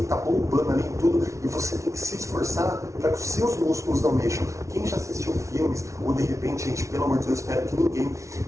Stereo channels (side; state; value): left; late; 0.14 ms